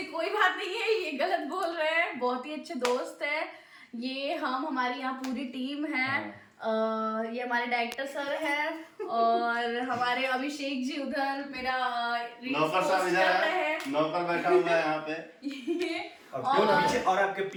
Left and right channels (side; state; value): both; identical; correlation 1.00